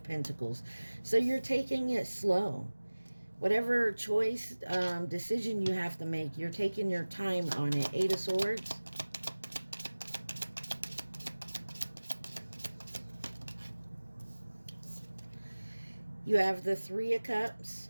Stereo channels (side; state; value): both; inverted; correlation -1.00